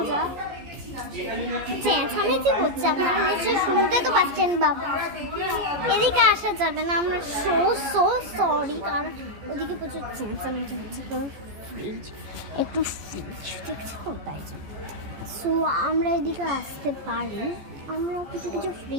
যা চেঁচামেচি করছে আপনারা নিশ্চয়ই শুনতে তো পাচ্ছেন। বাবা এদিকে আসা যাবে না, আমরা সো সরি, কারণ ওদিকে প্রচুর চেঁচামেচি হচ্ছে। ফ্রিজ একটু ফ্রিজ দেখছি তো, তাই জন্য। সো আমরা এদিকে আসতে পারি, আমরা কিছু কিছু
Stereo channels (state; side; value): late; left; 14 ms